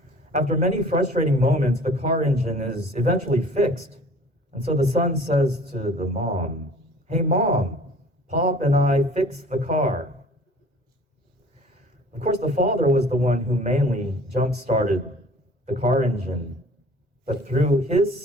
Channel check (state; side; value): normal; both; correlation 0.48